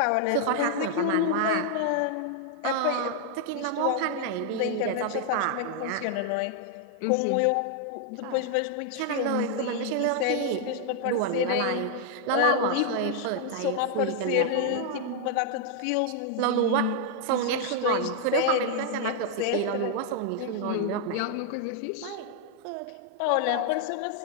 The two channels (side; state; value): both; different; correlation 0.00